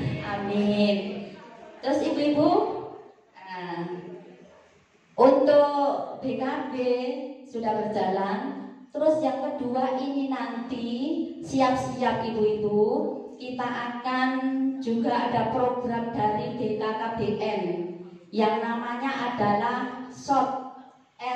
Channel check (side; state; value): both; identical; correlation 1.00